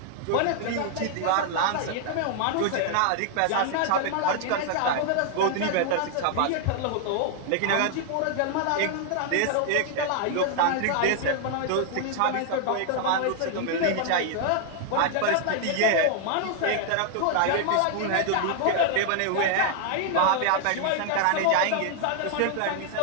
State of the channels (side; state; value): both; different; correlation 0.00